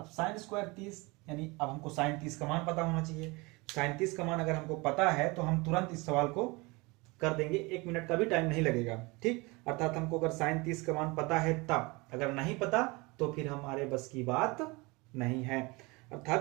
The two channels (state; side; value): quieter; left; 25.3 dB